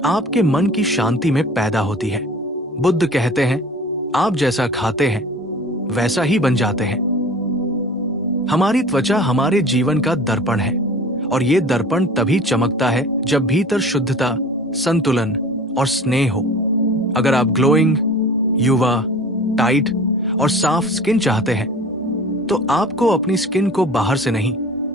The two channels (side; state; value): both; normal; correlation 0.42